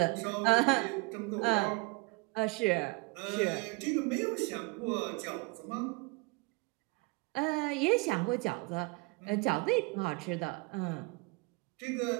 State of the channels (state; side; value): quieter; left; 26.3 dB